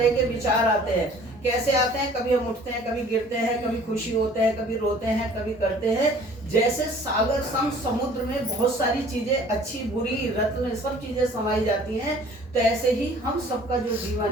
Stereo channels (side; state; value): both; normal; correlation 0.51